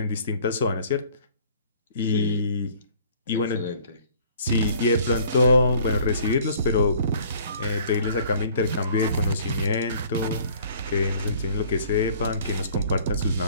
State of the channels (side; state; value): both; inverted; correlation -0.54